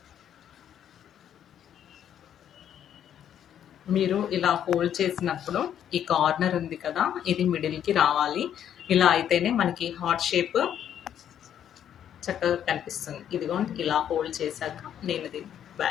మీరు ఇలా ఫోల్డ్ చేసినప్పుడు ఈ కార్నర్ ఉంది కదా, ఇది మిడిల్కి రావాలి. ఇలా అయితేనే మనకి హార్ట్ షేప్ చక్కగా కనిపిస్తుంది. ఇదిగోండి ఇలా ఫోల్డ్ చేశాక నేను ఇది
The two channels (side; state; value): right; quieter; 9.8 dB